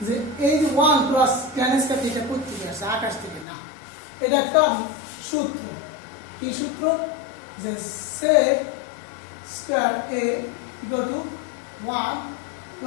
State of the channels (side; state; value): right; drops out; at 3.5 s